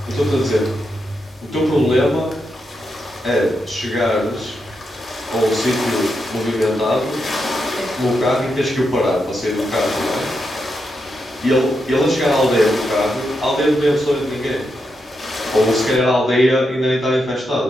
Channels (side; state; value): both; normal; correlation 0.84